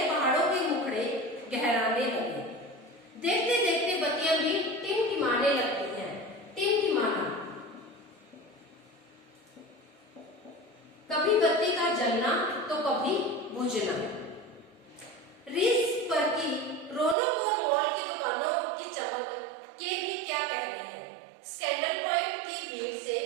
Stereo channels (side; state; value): left; drops out; at 17.2 s